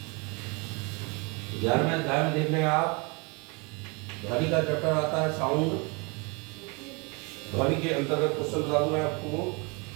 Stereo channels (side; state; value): left; quieter; 30.3 dB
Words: 11वें अध्याय में देख लें आप, ध्वनि का चैप्टर आता है साउंड। ध्वनि के अंतर्गत क्वेश्चन बता दूं मैं आपको।